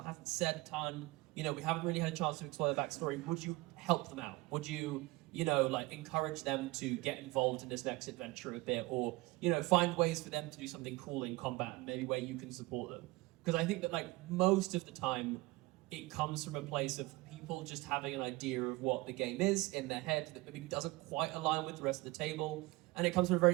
hasn't said a ton, we haven't really had a chance to explore their backstory. Would you help them out? Would you, like encourage them to get involved in this next adventure a bit, or, find ways for them to do something cool in combat, maybe where you can support them? Because I think that like most of the time it comes from a place of people just having an idea of what the game is in their head that maybe doesn't quite align with the rest of the table. And it comes from a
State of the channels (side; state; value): left; quieter; 21.8 dB